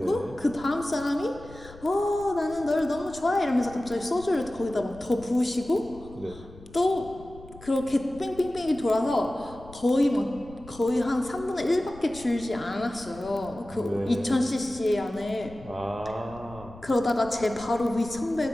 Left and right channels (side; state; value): left; noise; rumble, 19 dB below the sound